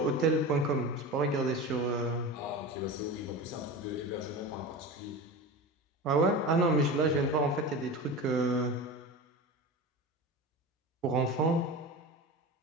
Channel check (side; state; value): both; normal; correlation 0.29